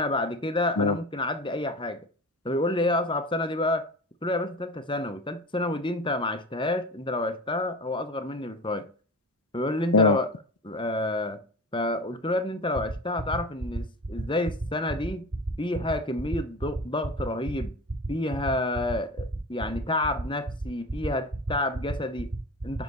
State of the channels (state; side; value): normal; both; correlation 0.31